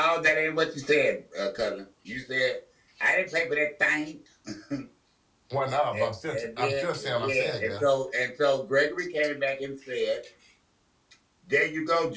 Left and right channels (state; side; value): identical; both; correlation 1.00